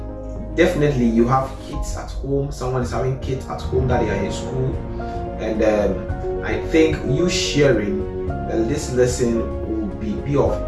Definitely you have kids at home, someone is having kids at home that they are in school, and I think you sharing this lesson will be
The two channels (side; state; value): both; identical; correlation 1.00